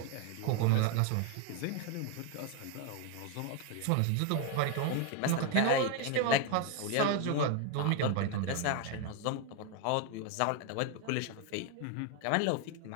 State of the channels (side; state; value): both; different; correlation 0.01